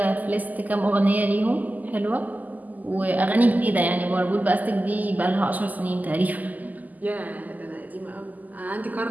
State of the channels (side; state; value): left; late; 0.081 ms